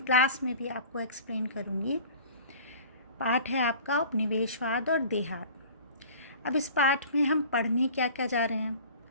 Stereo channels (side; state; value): both; inverted; correlation -0.43